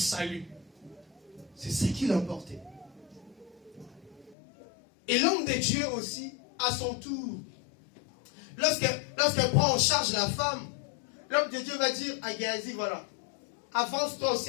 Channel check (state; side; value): drops out; right; at 4.4 s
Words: C'est ce qui l'emportait. Et l'homme de Dieu aussi, à son tour, lorsqu'elle prend en charge la femme, l'homme de Dieu va dire à Géasi, voilà, avance-toi aussi